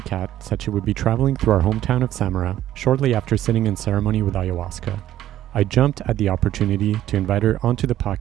Cat said she would be traveling through our hometown of Samara shortly after sitting in ceremony with ayahuasca, I jumped at the opportunity to invite her onto the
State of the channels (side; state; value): left; quieter; 12.7 dB